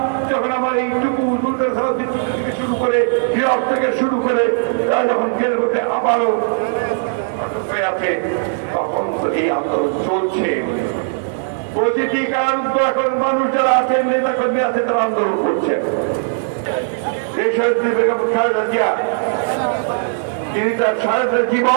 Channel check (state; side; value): silent; left; digital silence